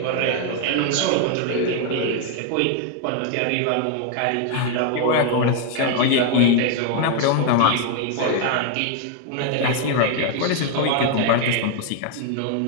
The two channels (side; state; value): both; different; correlation 0.00